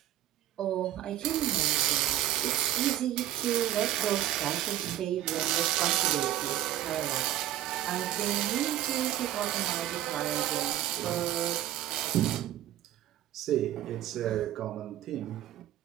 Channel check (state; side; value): quieter; left; 12.8 dB